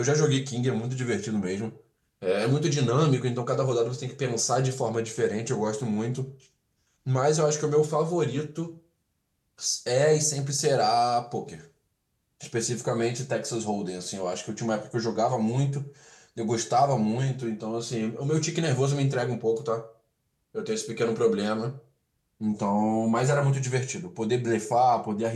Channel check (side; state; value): both; identical; correlation 1.00